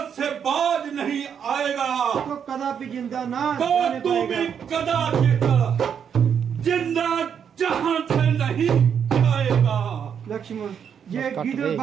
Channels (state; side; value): quieter; left; 7.8 dB